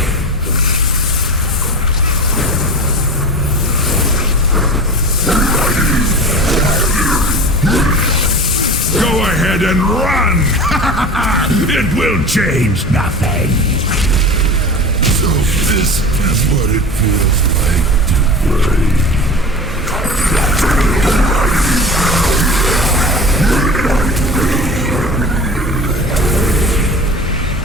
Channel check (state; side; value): normal; both; correlation 0.34